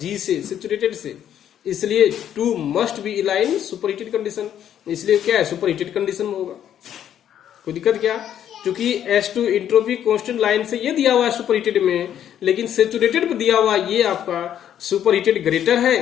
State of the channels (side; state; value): right; quieter; 10.1 dB